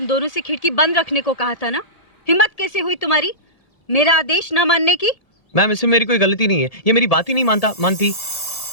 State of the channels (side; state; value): right; late; 1.7 ms